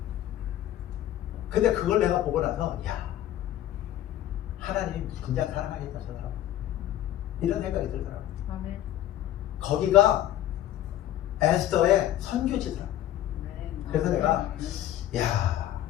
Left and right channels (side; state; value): right; quieter; 12.7 dB